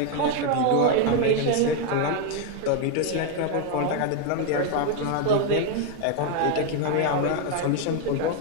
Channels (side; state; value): both; different; correlation 0.01